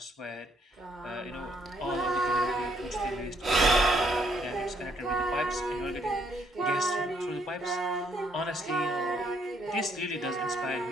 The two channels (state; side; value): normal; both; correlation 0.70